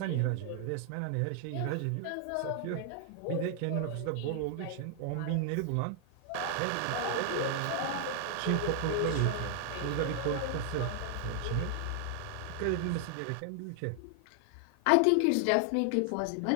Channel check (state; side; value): different; both; correlation 0.00